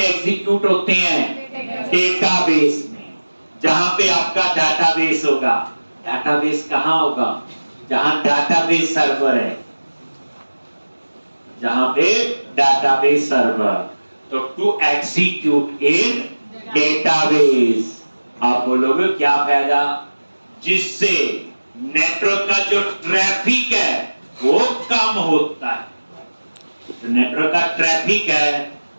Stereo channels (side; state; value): both; inverted; correlation -1.00